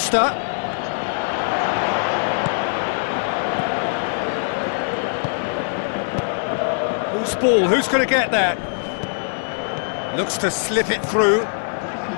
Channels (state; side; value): silent; right; digital silence